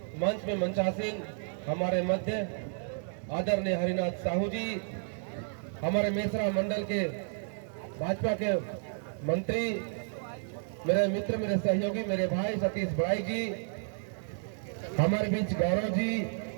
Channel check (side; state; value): left; silent; digital silence